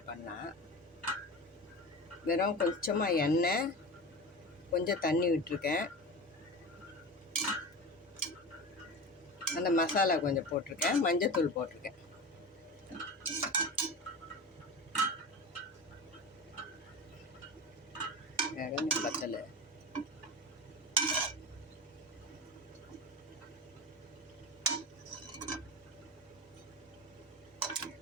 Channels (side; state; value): both; normal; correlation 0.28